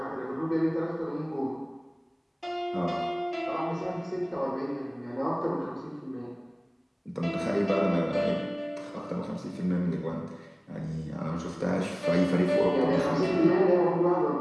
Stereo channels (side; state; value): both; identical; correlation 1.00